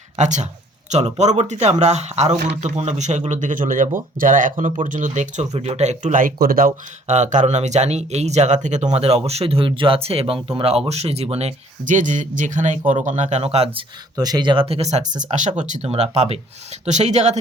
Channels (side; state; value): both; normal; correlation 0.58